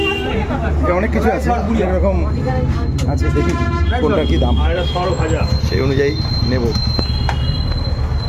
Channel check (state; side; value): identical; both; correlation 1.00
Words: অনেক কিছু আছে, এরকম আছে, দেখি কোনটা কি দাম, সেই অনুযায়ী নেব।